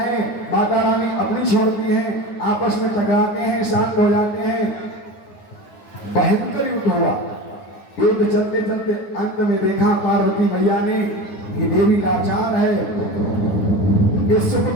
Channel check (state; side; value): late; right; 9.5 ms